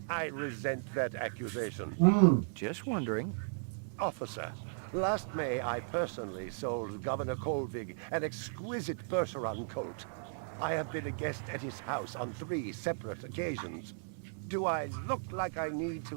I resent that accusation. Just wondering. Officer, last May I personally sold Governor Colvig an exquisite Bergeron coat. I have been a guest at his house on 3 separate occasions. Do I look like I need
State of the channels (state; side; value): silent; left; digital silence